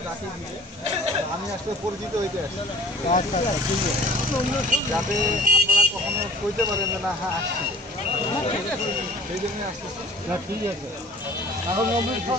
যাকে দিবে, আমি আসলে পরিচিত হইতে আসি। আচ্ছা আচ্ছা, ঠিক আছে। যাতে আপনারা কখনো কইতে পারেন যে না হ্যাঁ আসছিল, সেই জন্যই আসতেছি। না ঠিক আছে। এখন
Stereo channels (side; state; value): both; normal; correlation 0.50